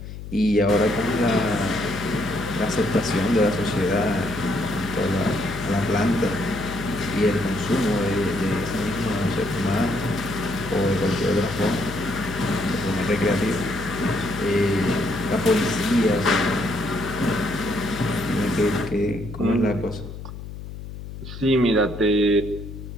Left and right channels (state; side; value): noise; left; hum, 11 dB below the sound